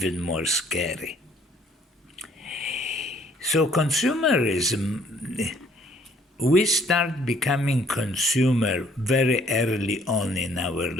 more scary. So consumerism, we start becoming consumer very early on in our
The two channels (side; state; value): both; normal; correlation 0.61